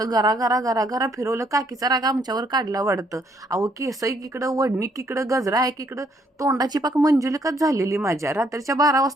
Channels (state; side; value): normal; both; correlation 0.69